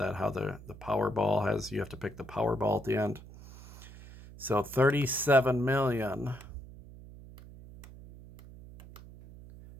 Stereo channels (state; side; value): noise; right; hum, 17 dB below the sound